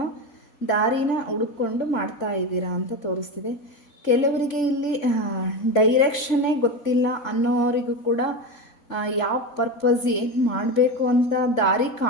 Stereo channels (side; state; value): right; late; 3.5 ms